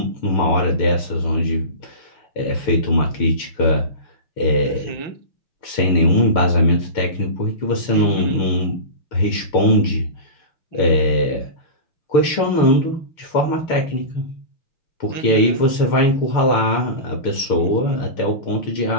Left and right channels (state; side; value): late; right; 6.8 ms